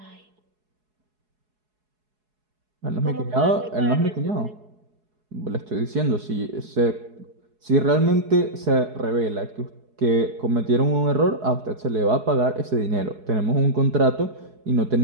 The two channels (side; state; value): left; late; 4.7 ms